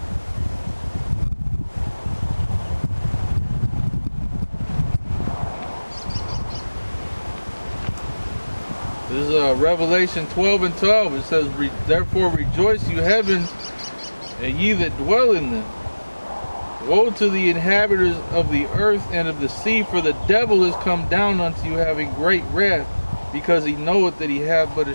This is Revelation 12:12. It says, "Therefore rejoice, you heavens, and ye that dwell in them. Woe to the inhabitants of the earth and of the sea, for the devil is come down unto you having great wrath, because he knoweth that he hath but a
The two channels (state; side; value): inverted; both; correlation -1.00